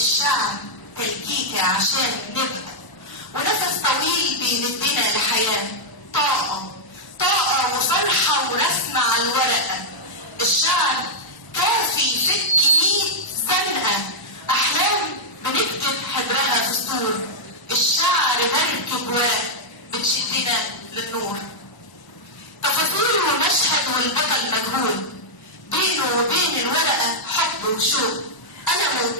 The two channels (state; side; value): late; right; 1.0 ms